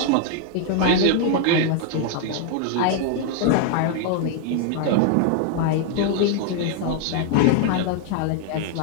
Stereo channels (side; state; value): both; different; correlation 0.00